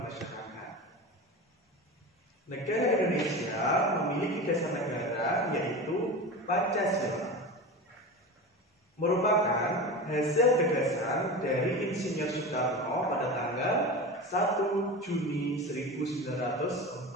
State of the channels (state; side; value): normal; both; correlation 0.28